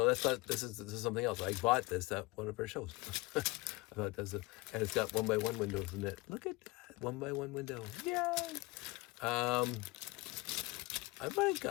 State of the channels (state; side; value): quieter; right; 23.1 dB